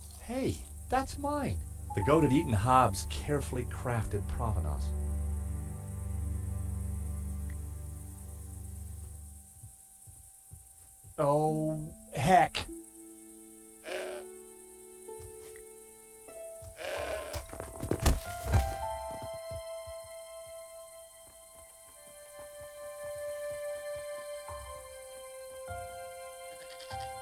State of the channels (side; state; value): both; identical; correlation 1.00